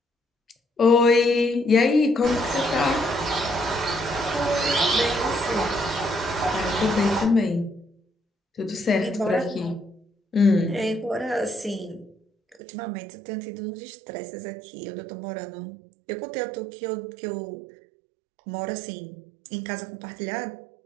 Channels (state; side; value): drops out; left; at 12.6 s